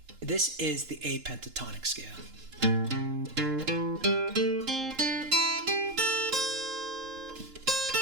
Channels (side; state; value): left; late; 6.6 ms